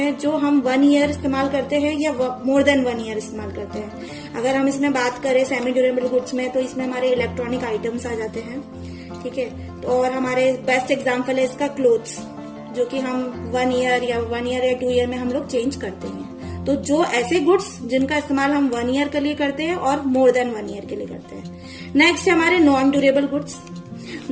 जो हम 1 ईयर इस्तेमाल करते हैं या मोर देन 1 ईयर इस्तेमाल करते हैं। अगर हम इसमें बात करें सेमी ड्यूरेबल गुड्स में, तो इसमें हमारे इलेक्ट्रॉनिक आइटम्स आ जाते हैं, ठीक है। और हमारे बेस्ट एग्जाम्पल है इसका क्लोथ्स, जो कि हम 1 ईयर या 2 ईयर में हम लोग चेंज करते हैं। तो जो ऐसे गुड्स जिनका इस्तेमाल हम 1 ईयर के लिए करते हैं और मोर देन 1 ईयर के लिए करते हैं। नेक्स्ट है हमारे non durable goods.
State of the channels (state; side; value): identical; both; correlation 1.00